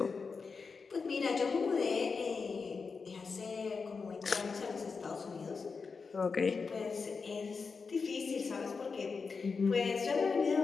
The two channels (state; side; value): quieter; right; 4.9 dB